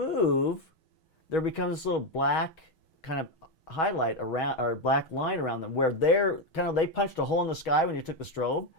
there becomes this little black kind of highlight around, or black line around them, where they punched a hole in the sky when you took the strobe,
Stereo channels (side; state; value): right; late; 6.3 ms